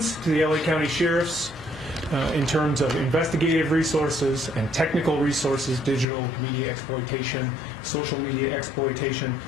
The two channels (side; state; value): right; drops out; at 6.1 s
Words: to the LA County Sheriffs in terms of investigative resources and technical resources, digital media exploitation, social media exploitation,